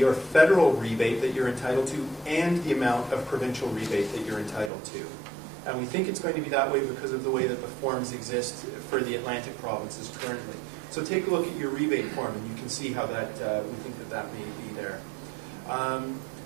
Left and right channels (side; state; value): left; drops out; at 4.7 s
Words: or federal rebate, that you're entitled to, and the amount of provincial rebate that you're entitled to. And we think it's going to be that way because of the way that the forms exist for the Atlantic provinces currently. So take a look at your rebate form, and you can see how that we think that may be there.